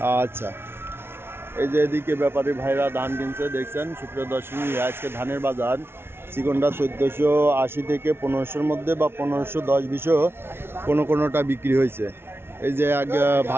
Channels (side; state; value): left; late; 0.12 ms